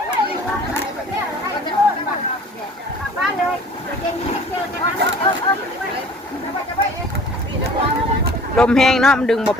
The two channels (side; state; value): both; normal; correlation 0.48